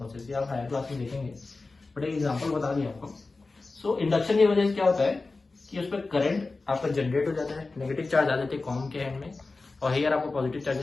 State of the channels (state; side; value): quieter; right; 3.6 dB